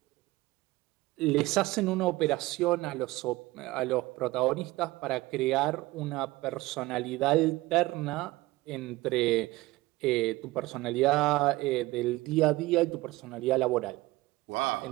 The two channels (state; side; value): quieter; left; 19.5 dB